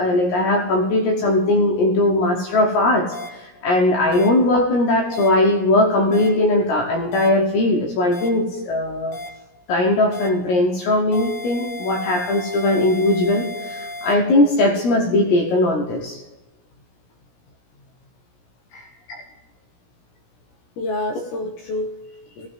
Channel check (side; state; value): right; late; 17 ms